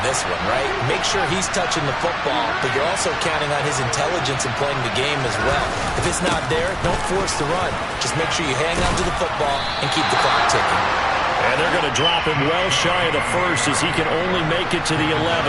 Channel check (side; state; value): both; identical; correlation 1.00